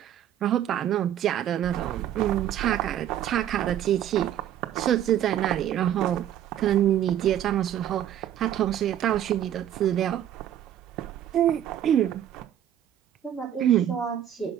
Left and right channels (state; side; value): quieter; left; 11.0 dB